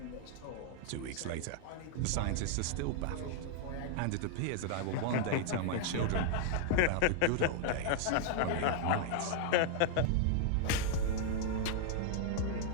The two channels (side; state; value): both; different; correlation 0.00